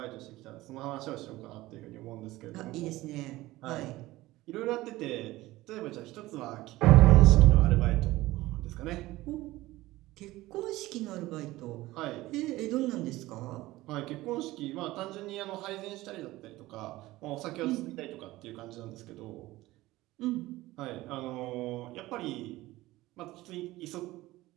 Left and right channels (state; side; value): quieter; left; 18.0 dB